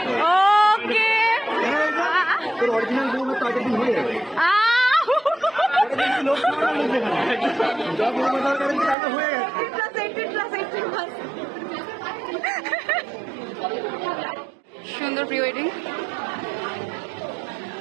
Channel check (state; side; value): drops out; left; at 9.0 s